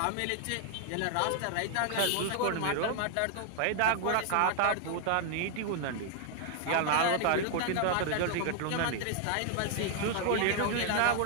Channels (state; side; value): different; both; correlation 0.00